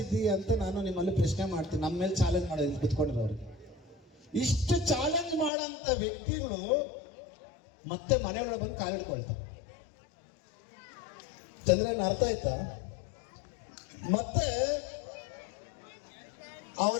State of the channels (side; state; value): right; drops out; at 5.5 s